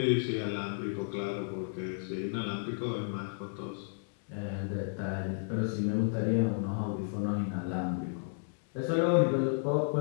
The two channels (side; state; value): right; silent; digital silence